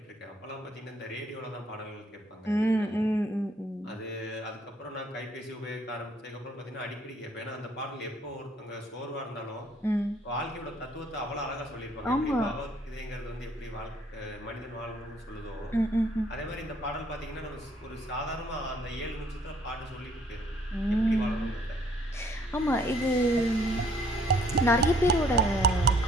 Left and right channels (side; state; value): both; normal; correlation 0.63